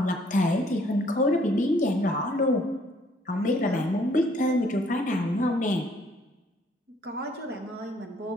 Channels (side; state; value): both; normal; correlation 0.63